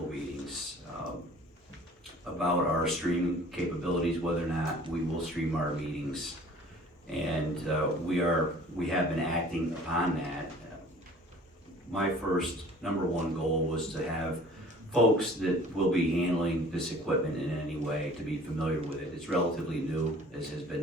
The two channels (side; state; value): both; normal; correlation 0.49